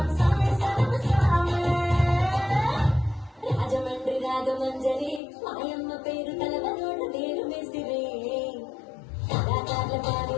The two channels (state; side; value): drops out; right; at 5.2 s